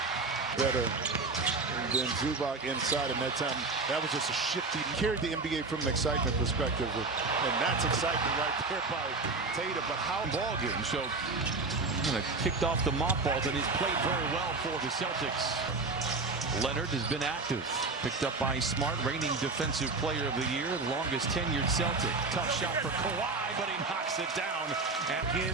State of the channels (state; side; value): quieter; left; 3.7 dB